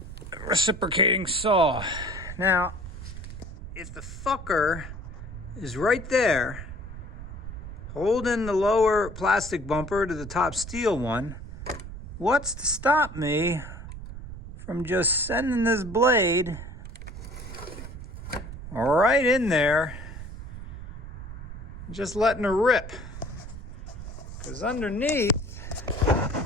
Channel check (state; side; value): noise; right; rumble, 10 dB below the sound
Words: reciprocating saw. Now, if the fucker is right there, holding the lower plastic bumper to the top steel one, what's to stop me from just sending this blade right in there, just letting her rip? Because underneath,